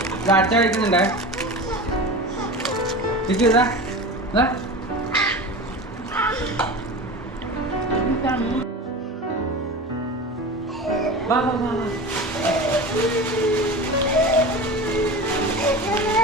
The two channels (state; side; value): normal; both; correlation 0.31